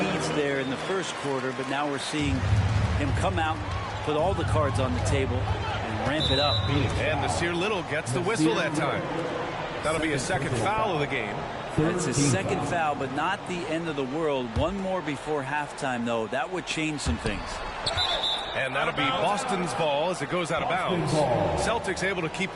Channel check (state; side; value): identical; both; correlation 1.00